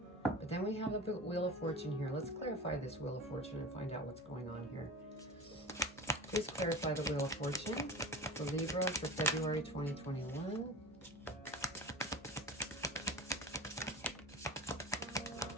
But then we have the Wheel of Fortune here. Let's clarify this Wheel of Fortune and find out what's going on here. Please clarify the Wheel of Fortune for Libra for February 2021.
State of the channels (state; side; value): normal; both; correlation 0.33